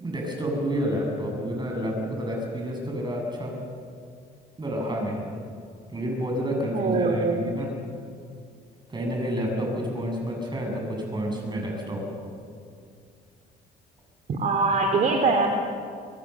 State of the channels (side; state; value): both; normal; correlation 0.42